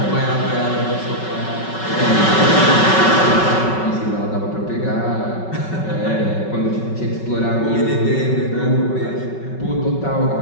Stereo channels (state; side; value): late; right; 5.3 ms